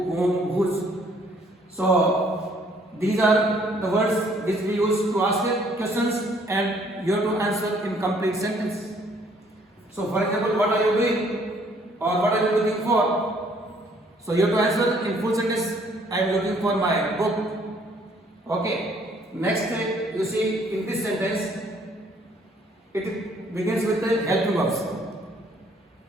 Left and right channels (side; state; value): both; normal; correlation 0.63